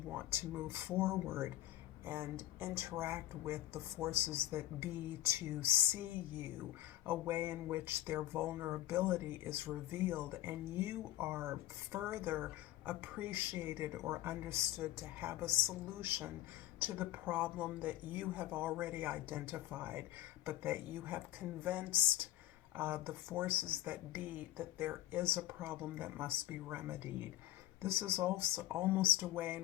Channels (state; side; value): quieter; right; 14.7 dB